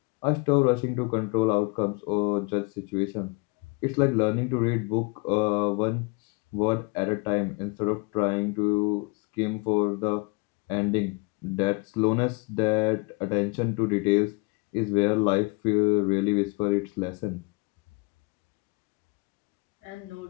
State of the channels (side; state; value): right; quieter; 30.5 dB